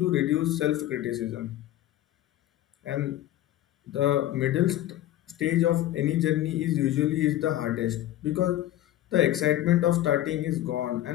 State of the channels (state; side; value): quieter; right; 13.7 dB